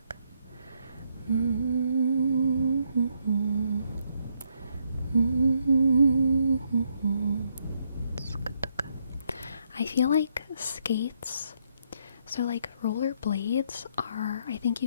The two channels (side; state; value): both; inverted; correlation -0.74